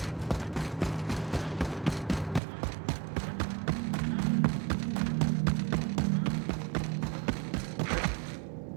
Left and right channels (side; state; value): left; drops out; at 2.4 s